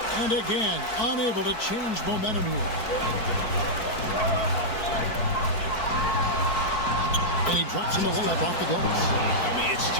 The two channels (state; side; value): late; right; 4.6 ms